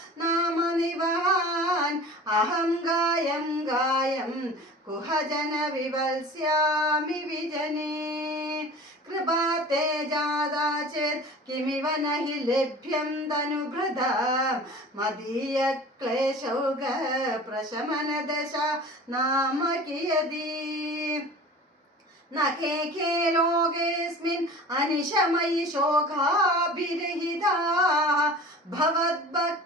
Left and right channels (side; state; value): both; normal; correlation 0.40